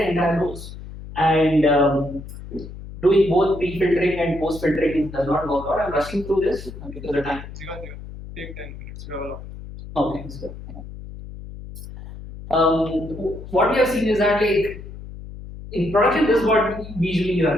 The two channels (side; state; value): left; noise; hum, 13 dB below the sound